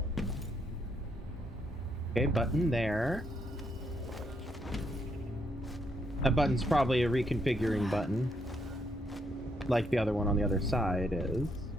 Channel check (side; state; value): both; normal; correlation 0.75